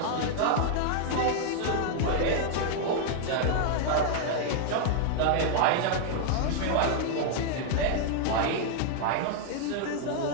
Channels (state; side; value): different; both; correlation 0.00